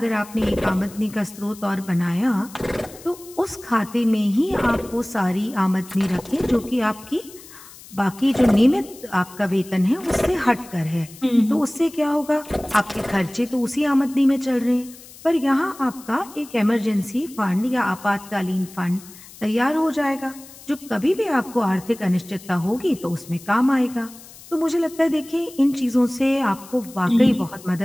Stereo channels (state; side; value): noise; left; hiss, 19 dB below the sound